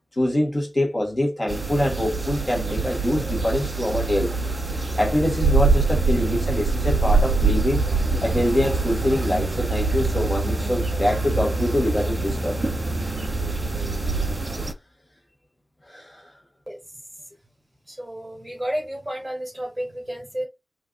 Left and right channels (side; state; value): both; normal; correlation 0.82